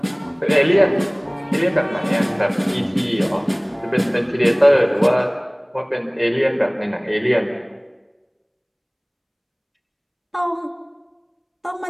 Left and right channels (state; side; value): identical; both; correlation 1.00